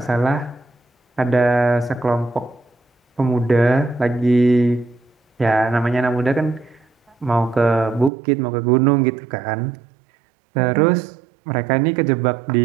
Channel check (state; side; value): drops out; left; at 8.1 s